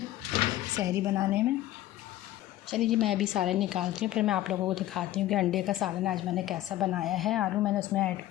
सहरी बनाने में। चलिए जी, मैं अभी सालन निकालती हूँ, फिर मैं आप लोगों को दिखाती हूँ कि अंडे का सालन आज मैंने कैसा बनाया है। आलू मैंने उसमें ऐड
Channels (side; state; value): right; quieter; 14.6 dB